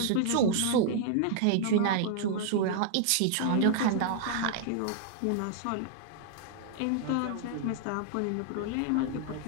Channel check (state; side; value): different; both; correlation 0.00